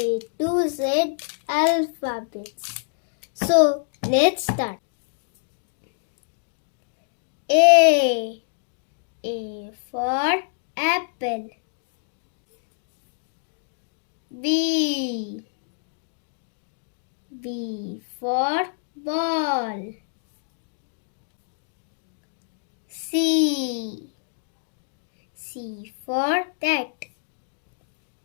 to Z alphabets. So let's start. A for apple. B for ball. C for cat.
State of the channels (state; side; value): silent; right; digital silence